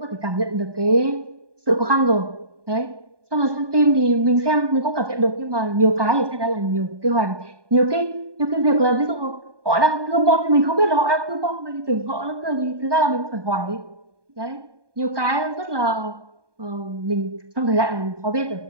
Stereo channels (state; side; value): late; left; 1.2 ms